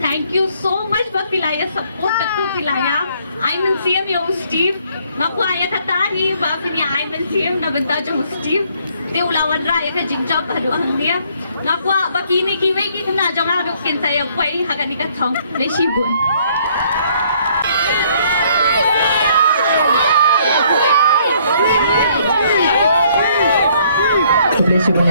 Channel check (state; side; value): inverted; both; correlation -0.64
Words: thank you so much for pilaya support to pilaya. I'm in CM yo Steve. Naku aya katari ba kini I'm in CM na benda jo Steve. Te ulawan ra ya ka jingjab baru angnia. Naku bakini kiwe ki na jonga ru kin saya kwai hagani ka thong le shibun. Kuble shibun